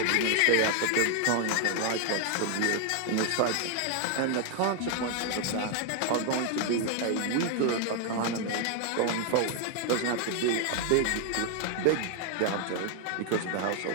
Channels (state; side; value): different; both; correlation 0.00